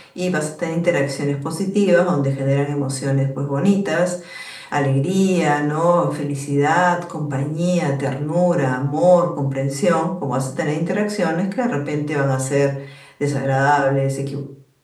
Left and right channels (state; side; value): identical; both; correlation 1.00